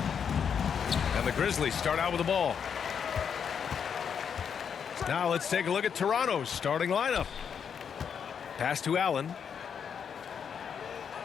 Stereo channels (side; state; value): right; quieter; 7.3 dB